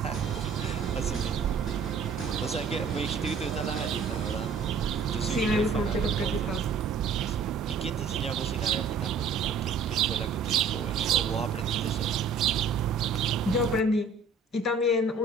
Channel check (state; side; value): quieter; left; 4.8 dB